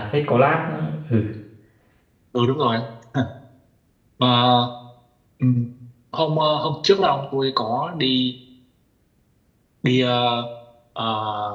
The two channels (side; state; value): both; identical; correlation 1.00